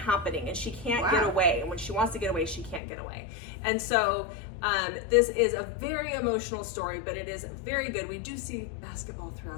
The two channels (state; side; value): drops out; right; at 2.8 s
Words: and she can't get away. And when she wants to get away, she can't get away. And so this is a very emotional story, but it is very good. We do see basketball